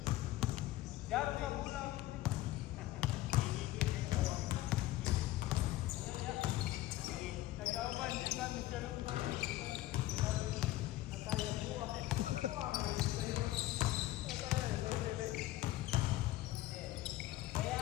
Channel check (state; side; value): quieter; right; 16.0 dB